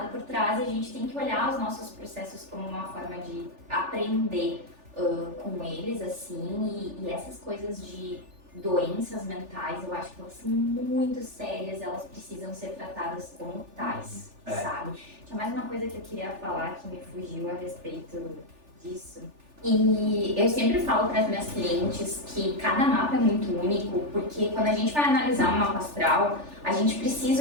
por trás e a gente tem que olhar os nossos processos como uma forma de aprender com eles, assim, e essas coisas de doenças mentais, eu acho que elas são muito sérias, elas precisam ser tratadas como tais, sabe? Tinha mais uma coisa que eu queria falar que me fugiu a respeito disso. E eu sempre falo para as minhas clientes que cada mapa é muito único, porque quando a gente vai analisar um mapa astral, a gente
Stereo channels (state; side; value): late; left; 3.4 ms